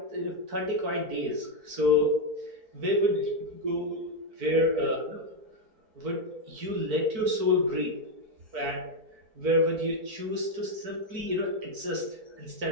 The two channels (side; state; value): left; late; 4.5 ms